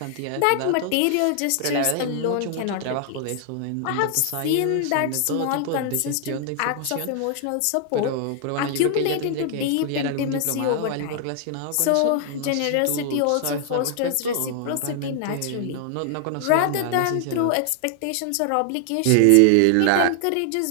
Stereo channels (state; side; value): different; both; correlation 0.00